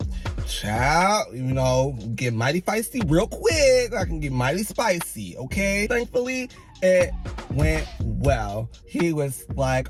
child, you know, get mighty feisty real quick. I can get mighty spicy, okay? Thankfully, it went well. He was like,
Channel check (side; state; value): both; identical; correlation 1.00